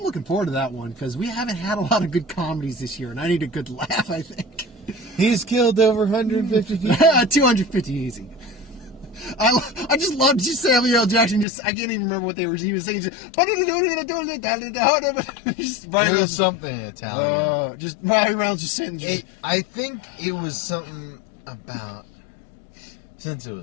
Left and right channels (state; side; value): drops out; right; at 11.5 s